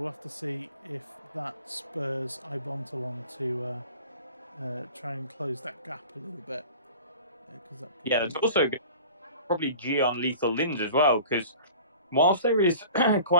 have to see if that spurs Ibontal on to try and close that gap a little bit. There's also probably G on Lethal Lins as well, because whilst there is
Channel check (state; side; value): inverted; both; correlation -0.42